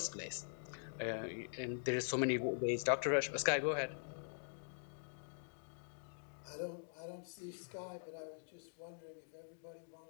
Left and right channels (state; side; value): silent; right; digital silence